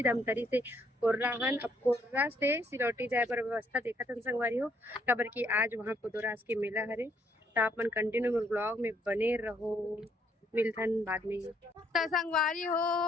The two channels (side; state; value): both; normal; correlation 0.69